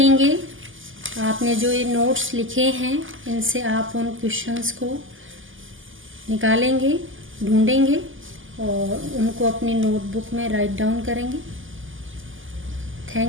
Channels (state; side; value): late; left; 0.58 ms